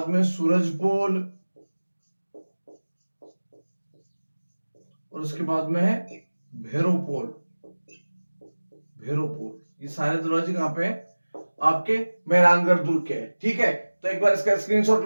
में सूरज पोल और उसके बाद में है भैरोपोल। भैरोपोल, ये सारे दरवाजे कहाँ पे है? आपके मेहरानगढ़ दुर्ग के है। ठीक है, तो एक बार इसका स्क्रीनशॉट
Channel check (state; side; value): inverted; both; correlation -1.00